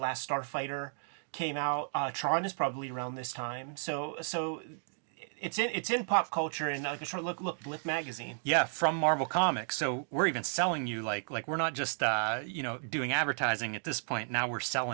Starfighter came out. Tron is probably around this time. So it's in pop culture, and like a short look, Blip magazine. Yeah, from Marvel Comics. So we're even selling you like we're not just doing advertising at this point. Now we're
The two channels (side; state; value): left; silent; digital silence